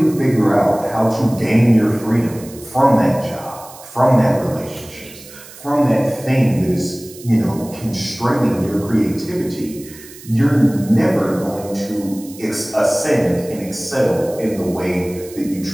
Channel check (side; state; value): right; noise; hiss, 19 dB below the sound